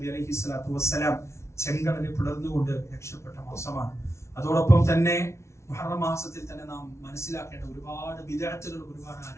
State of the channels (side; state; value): right; late; 0.13 ms